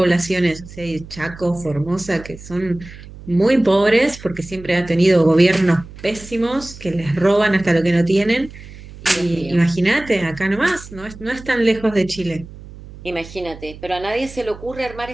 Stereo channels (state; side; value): noise; right; hum, 17 dB below the sound